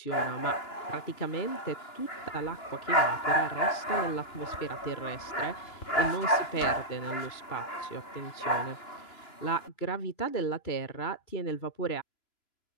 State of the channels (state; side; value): late; right; 3.0 ms